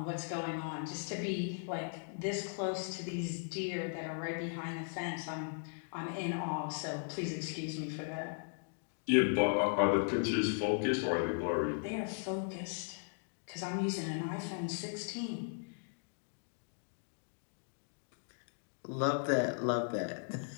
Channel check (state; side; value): silent; right; digital silence